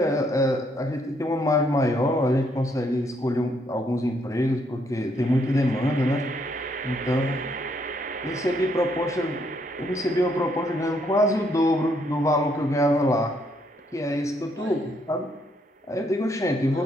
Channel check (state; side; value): normal; both; correlation 0.72